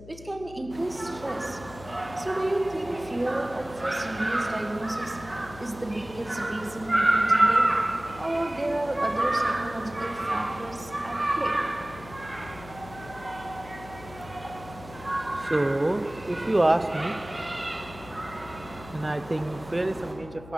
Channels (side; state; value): left; noise; hum, 17 dB below the sound